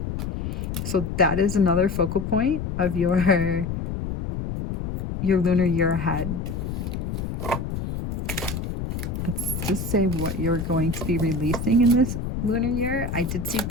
So that is another focal point of your lunar year ahead. Let's just say what you're going to be releasing in this lunar year. I did see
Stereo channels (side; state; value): left; noise; rumble, 4 dB below the sound